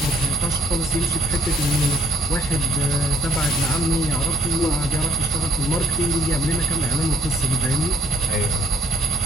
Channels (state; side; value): normal; both; correlation 0.61